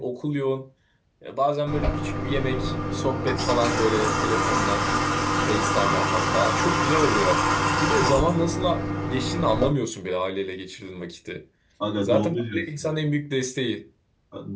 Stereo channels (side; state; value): both; identical; correlation 1.00